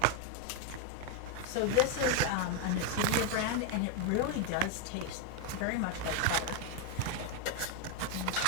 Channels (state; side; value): different; both; correlation 0.01